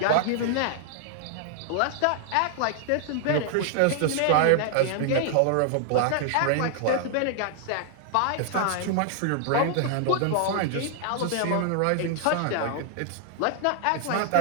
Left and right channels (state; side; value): different; both; correlation 0.00